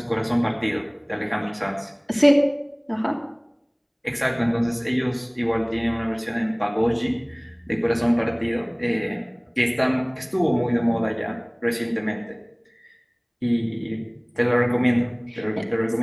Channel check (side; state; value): both; identical; correlation 1.00